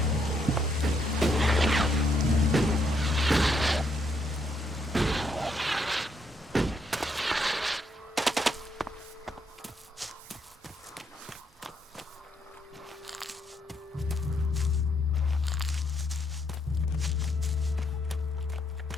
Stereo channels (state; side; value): normal; both; correlation 0.74